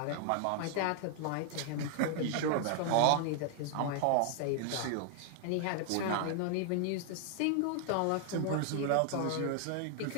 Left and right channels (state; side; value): different; both; correlation 0.00